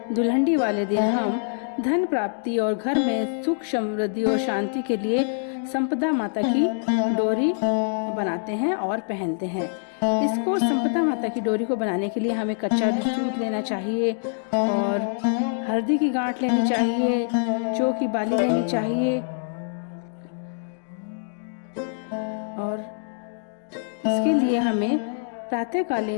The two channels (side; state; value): right; silent; digital silence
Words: दुल्हनडी वाले दिन हम धन प्राप्ति और घर में सुख समृद्धि और शांति के लिए संपदा माता की डोरी बनाते हैं और पहनते हैं। इसको संपदा माता की डोरी को बनाने के लिए हमें कच्चा दूध लेना चाहिए और हल्दी की गांठ लेनी चाहिए, जौ की बाली लेनी चाहिए और इसके लिए हमें